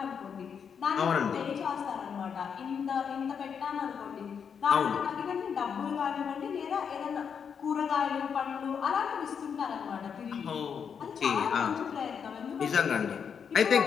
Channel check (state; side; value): quieter; right; 7.0 dB